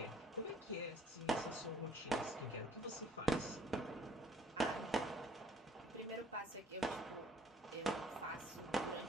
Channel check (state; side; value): normal; both; correlation 0.58